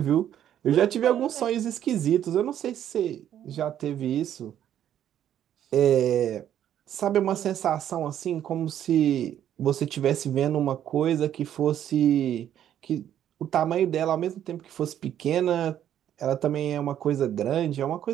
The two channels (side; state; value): left; quieter; 10.6 dB